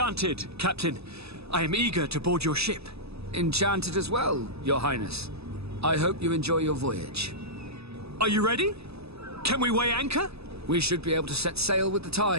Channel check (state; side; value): late; left; 0.79 ms